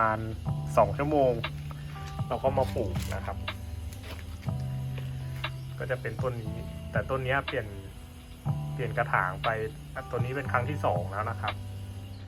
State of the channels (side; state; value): both; identical; correlation 1.00